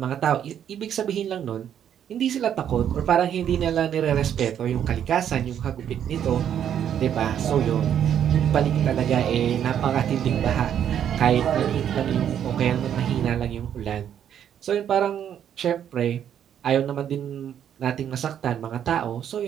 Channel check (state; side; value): quieter; left; 9.5 dB